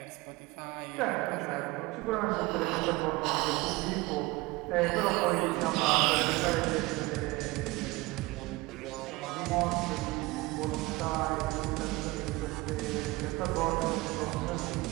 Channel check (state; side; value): quieter; left; 21.9 dB